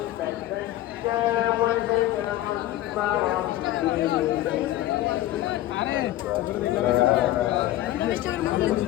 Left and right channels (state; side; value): quieter; right; 14.6 dB